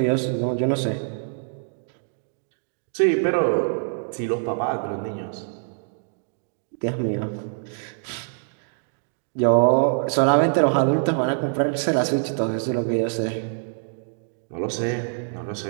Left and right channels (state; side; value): silent; left; digital silence